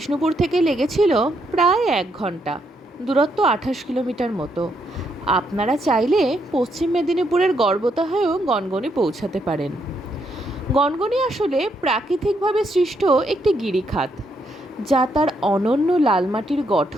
থেকে লেগেছিল প্রায় 1 ঘন্টা। দূরত্ব 28 কিলোমিটার মতো। আপনারা চাইলে পশ্চিম মেদিনীপুরের গড়বেতা হয়েও গনগনি পৌঁছাতে পারেন। গনগনি আসলে প্রাকৃতিকভাবে সৃষ্ট একটি গিরিখাত, যা তার অনন্য লাল মাটির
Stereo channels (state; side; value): normal; both; correlation 0.76